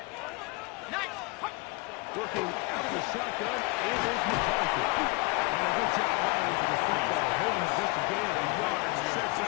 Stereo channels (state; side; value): quieter; right; 25.7 dB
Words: Nice. Working out of the shotgun, it is McCarthy. And a good job running to the football. Holding just a gain of a yard, sets